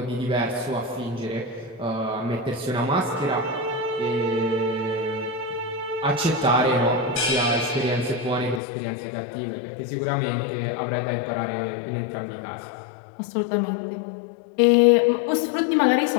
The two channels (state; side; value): drops out; right; at 8.6 s